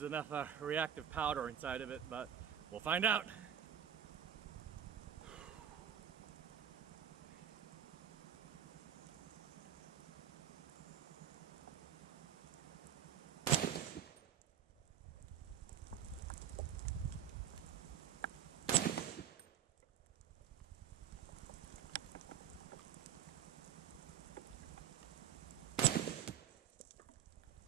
enough reactive powder inside of it, but we'll find out.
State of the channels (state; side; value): quieter; left; 9.3 dB